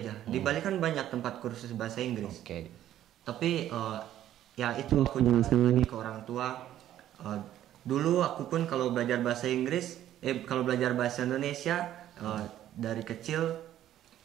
Di Bali kan banyak tempat kursus bahasa Inggris. Tapi ya itu aku jelasin lagi ke orang tua. Dulu aku pun kalau belajar bahasa Inggris, kalau belajar bahasa Indonesia dari kecil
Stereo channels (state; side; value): quieter; left; 12.2 dB